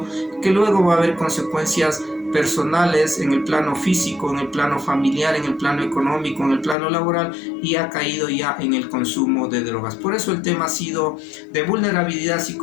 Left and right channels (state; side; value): drops out; right; at 6.8 s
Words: que luego va a haber consecuencias personales en el plano físico, en el plano familiar, en el plano económico, en el plano laboral y ha caído ya en el consumo de drogas. Por eso el tema ha sido de vulnerabilidad